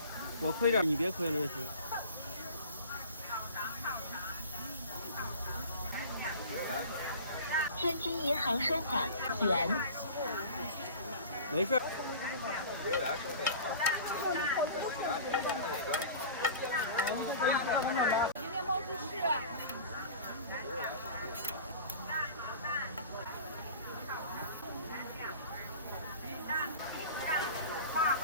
我亏点，你别亏了，这是。天津银行收款元。没事。今天毛主席。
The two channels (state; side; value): inverted; both; correlation -0.39